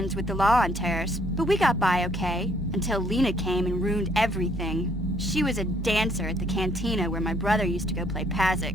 with the law on Taris, but we got by okay, until Lena came and ruined everything. She was a dancer at the cantina where my brother used to go play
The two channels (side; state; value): both; normal; correlation 0.66